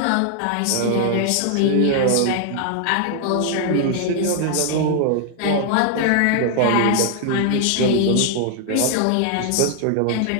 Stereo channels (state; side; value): different; both; correlation 0.00